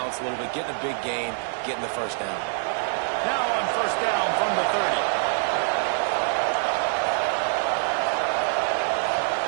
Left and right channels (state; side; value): silent; left; 62 dB below the other